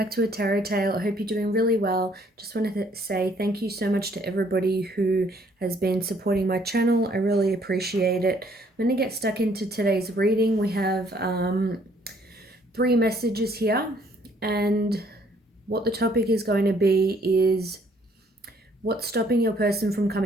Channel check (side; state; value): both; normal; correlation 0.64